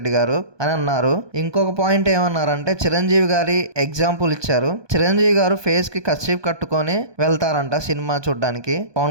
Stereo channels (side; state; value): left; late; 1.2 ms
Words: గారు అని అన్నారు. ఇంకొక పాయింట్ ఏమన్నారంటే, చిరంజీవి గారి ఎగ్జాంపుల్ ఇచ్చారు. చిరంజీవి గారు ఫేస్ కి కర్చీఫ్ కట్టుకొని వెళ్తారంట సినిమా చూడడానికి.